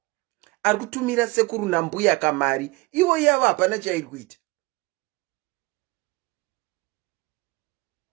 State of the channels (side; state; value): left; quieter; 23.0 dB